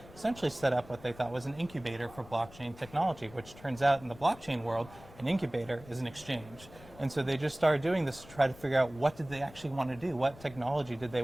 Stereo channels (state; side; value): noise; left; rumble, 20 dB below the sound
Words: essentially set up what they thought was an incubator for blockchain technology, which turns out in the blockchain world, an incubator is an exchange. And so they just started doing this to try to figure out what did they actually want to do, what technology did they